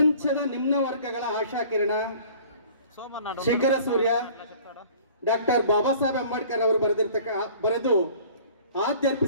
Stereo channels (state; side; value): inverted; both; correlation -0.49